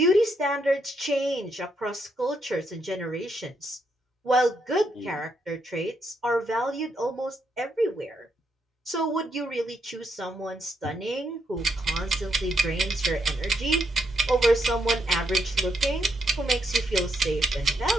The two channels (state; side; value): normal; both; correlation 0.78